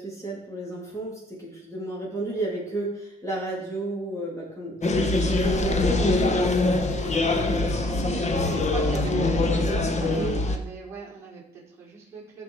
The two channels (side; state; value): both; normal; correlation 0.61